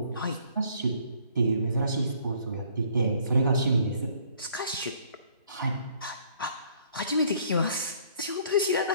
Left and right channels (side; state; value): both; inverted; correlation -0.61